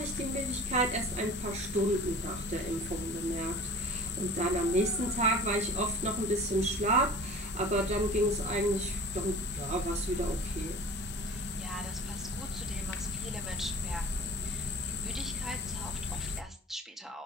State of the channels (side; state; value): both; normal; correlation 0.42